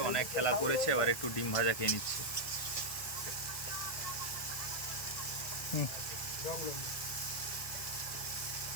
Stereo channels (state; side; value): late; right; 1.5 ms